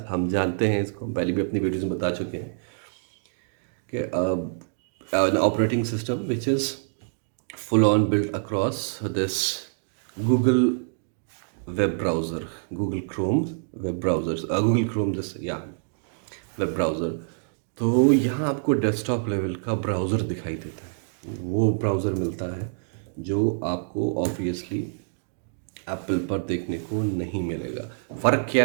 हम जानते हैं, इसको हम पहले भी अपनी वीडियोज़ में बता चुके हैं कि an operating system which is full on built across this Google web browser, Google Chrome web browsers, Google Chrome this web browser। तो यहाँ आपको डेस्कटॉप लेवल का ब्राउज़र दिखाई देता है, वो ब्राउज़र मिलता है जो आपको ऑब्वियसली एप्पल पर देखने को नहीं मिलेगा। फ़र्क क्या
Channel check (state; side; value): silent; left; digital silence